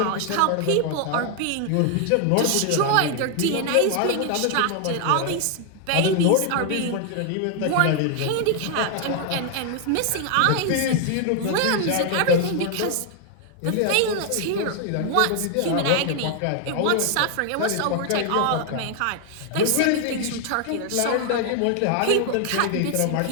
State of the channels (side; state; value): both; different; correlation 0.00